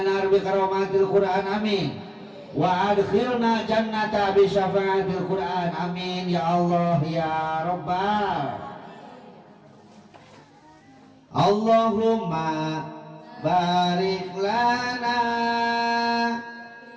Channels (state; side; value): identical; both; correlation 1.00